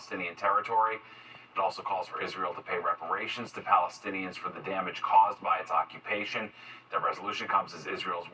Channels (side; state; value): both; identical; correlation 1.00